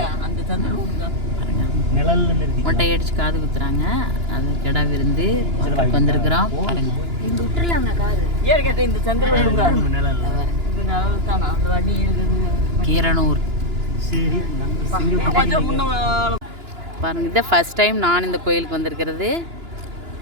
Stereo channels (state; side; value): late; left; 2.9 ms